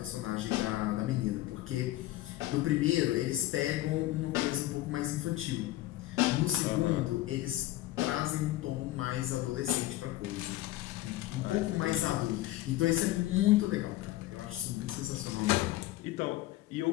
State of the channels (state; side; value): quieter; right; 16.1 dB